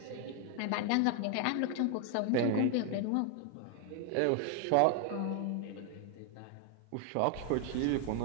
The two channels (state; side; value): different; both; correlation 0.00